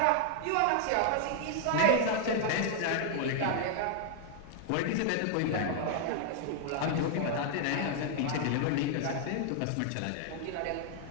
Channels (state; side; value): different; both; correlation 0.00